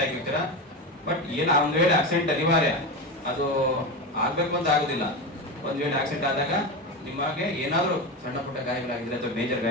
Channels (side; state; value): both; normal; correlation 0.20